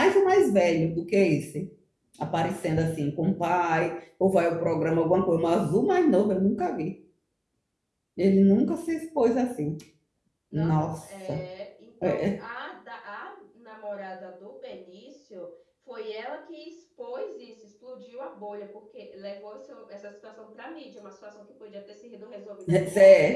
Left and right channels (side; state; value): both; identical; correlation 1.00